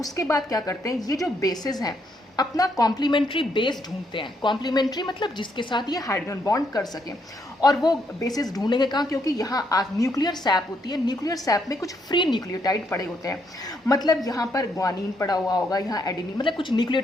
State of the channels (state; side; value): normal; both; correlation 0.75